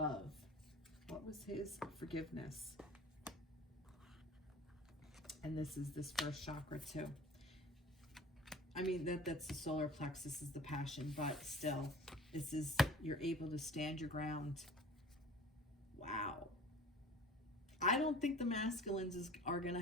What was his? Forgiveness. And this is this first chakra too. I mean, that's the solar plexus, is the passion, but still, this is, you're able to stand your ground. Wow. I don't think the masculines are going to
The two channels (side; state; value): both; normal; correlation 0.43